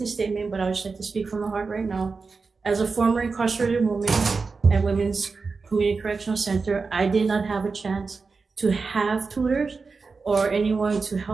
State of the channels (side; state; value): left; quieter; 4.5 dB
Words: statement, but I would just like to speak from the heart right now. As a former incarcerated woman at Women's Community Correctional Center, I did not have a chance to have tutors or anyone to